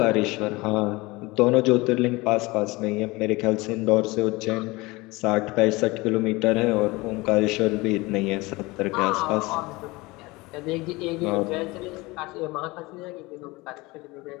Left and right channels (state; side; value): quieter; right; 22.5 dB